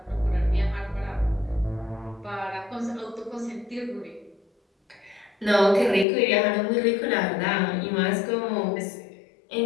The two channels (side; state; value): right; drops out; at 6.1 s